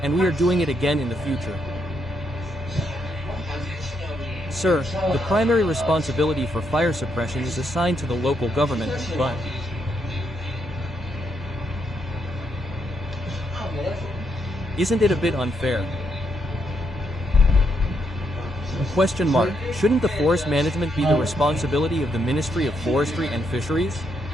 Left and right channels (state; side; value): normal; both; correlation 0.78